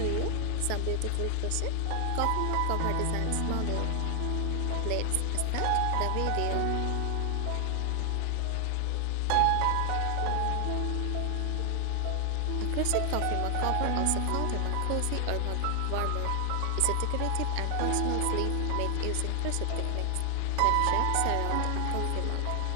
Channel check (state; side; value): different; both; correlation 0.00